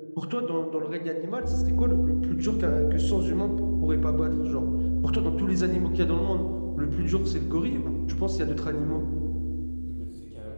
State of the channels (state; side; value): inverted; both; correlation -1.00